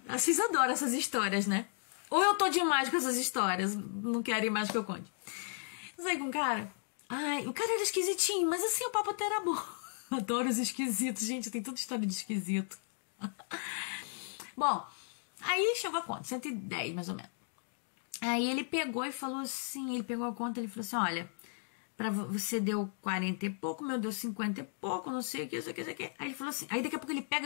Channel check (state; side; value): silent; right; 54 dB below the other